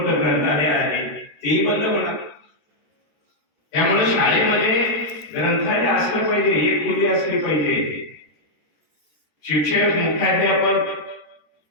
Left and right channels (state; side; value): late; right; 13 ms